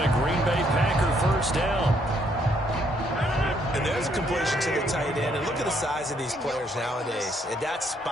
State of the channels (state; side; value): normal; both; correlation 0.70